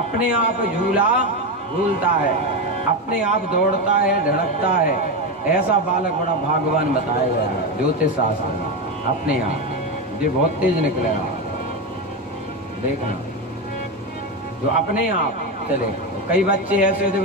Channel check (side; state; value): both; normal; correlation 0.14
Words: आप झूला झूलता है, अपने आप दौड़ता है, धड़कता है, ऐसा बालक बड़ा भाग्यवान बताया गया है ज्योतिष शास्त्र में। अपने आप ये बहुत तेज निकलेगा, देखना, जो अपने आप चले। कई बच्चे ऐसे थे